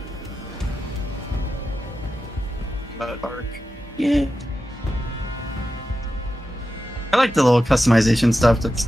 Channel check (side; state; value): both; normal; correlation 0.91